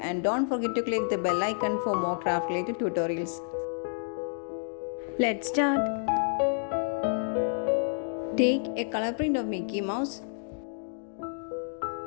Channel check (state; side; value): silent; right; digital silence